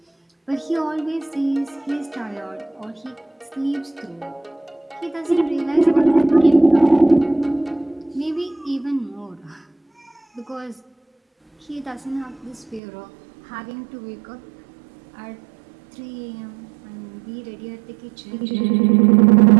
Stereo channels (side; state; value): left; drops out; at 12.8 s